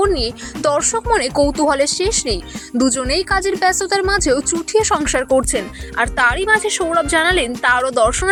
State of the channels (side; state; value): both; identical; correlation 1.00